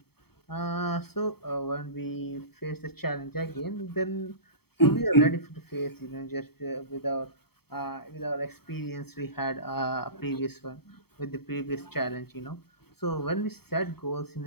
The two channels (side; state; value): right; late; 0.96 ms